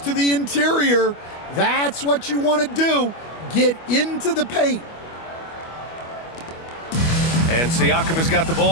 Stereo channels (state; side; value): late; right; 25 ms